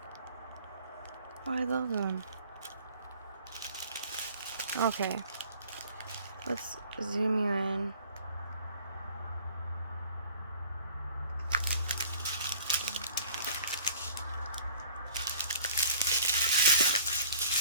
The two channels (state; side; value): inverted; both; correlation -0.50